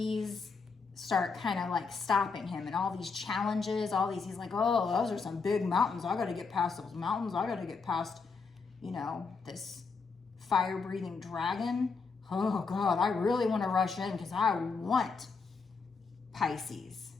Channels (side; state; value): right; quieter; 4.8 dB